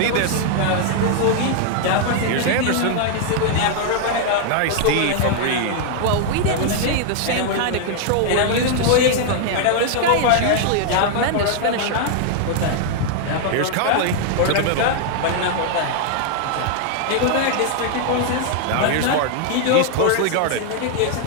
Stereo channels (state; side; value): different; both; correlation 0.00